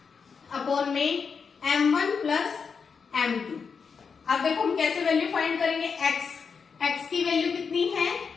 upon में m1 प्लस m2। अब देखो हम कैसे वैल्यू फाइंड करेंगे, x की वैल्यू कितनी है,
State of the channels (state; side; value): quieter; right; 5.8 dB